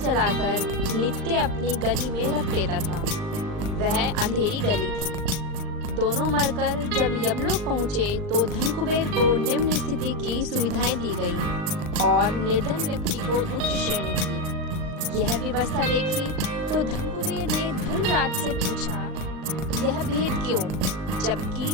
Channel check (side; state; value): left; late; 39 ms